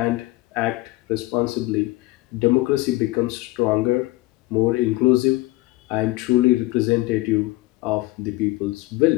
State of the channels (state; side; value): quieter; right; 19.7 dB